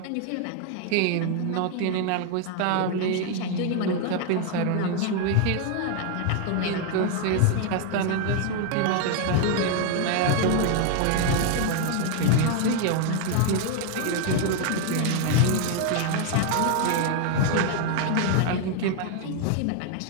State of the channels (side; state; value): both; different; correlation 0.01